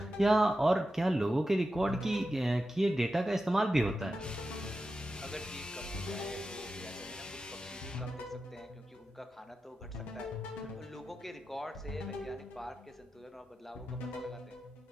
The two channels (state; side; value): normal; both; correlation 0.91